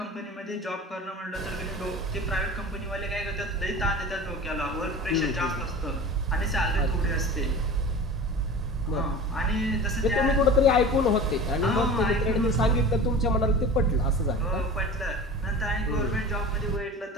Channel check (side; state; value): both; normal; correlation 0.36